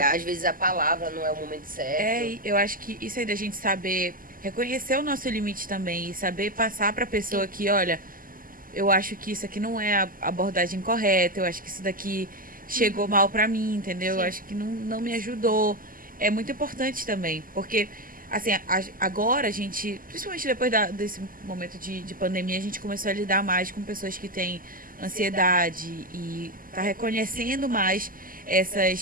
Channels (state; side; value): late; left; 0.41 ms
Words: Às vezes a palavra não é o momento certo. E eu acho que isso aí da gente saber reconhecer o nosso limite também e saber passar pra pessoa que, olha, eu acho que isso aqui não é a abordagem correta, eu acho que isso daqui chegou mal pra mim, entendeu? Eu acho que não me ajudou. É muito importante também, porque, assim, agora a gente, principalmente depois desse momento de pandemia, a gente começou a lidar mais com pessoas que têm ansiedade e tá reconhecendo mais